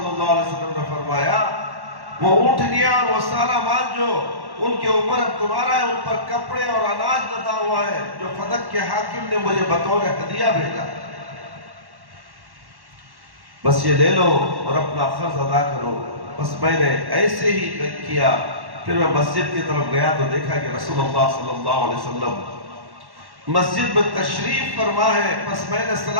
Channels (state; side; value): late; left; 1.1 ms